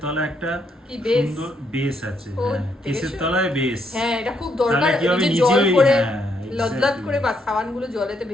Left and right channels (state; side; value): normal; both; correlation 0.75